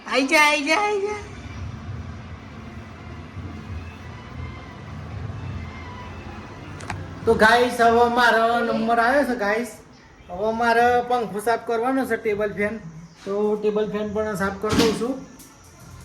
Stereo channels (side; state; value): both; identical; correlation 1.00